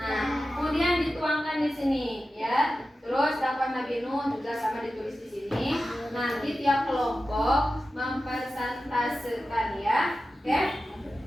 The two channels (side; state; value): both; normal; correlation 0.93